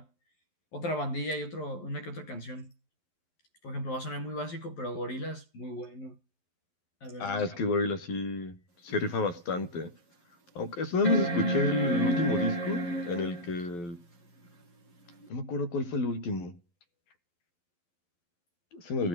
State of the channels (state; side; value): late; right; 11 ms